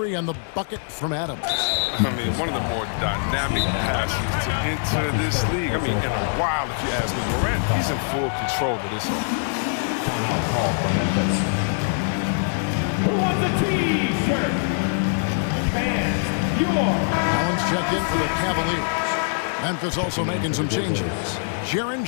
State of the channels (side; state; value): right; silent; 63 dB below the other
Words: on the bucket from Adams. I mean, one of the more dynamic passes to enter this league. I mean, in a while, if you ask me. Morant, he's in full control of this one. Who wants a T-shirt? Fans, Allen's checked in for the Cavaliers. Memphis also making some changes. Jaren